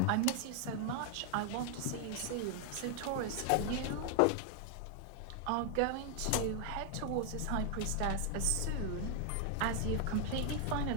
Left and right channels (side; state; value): both; different; correlation 0.00